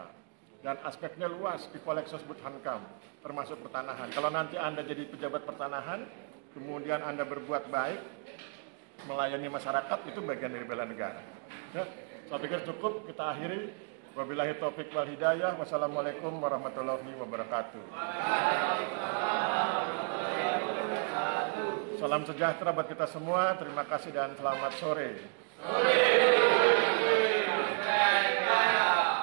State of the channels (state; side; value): quieter; left; 38.9 dB